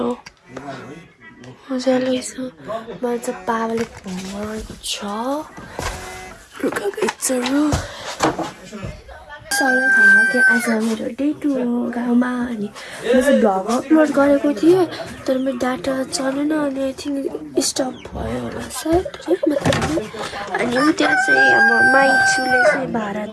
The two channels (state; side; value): identical; both; correlation 1.00